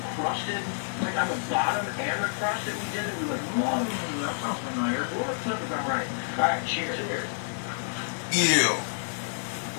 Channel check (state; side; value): silent; right; digital silence